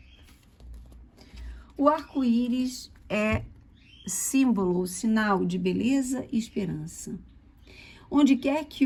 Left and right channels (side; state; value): both; identical; correlation 1.00